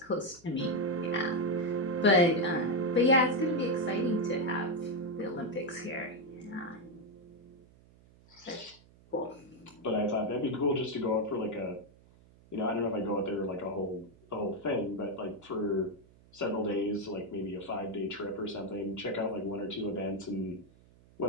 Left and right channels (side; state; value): right; noise; hum, 26 dB below the sound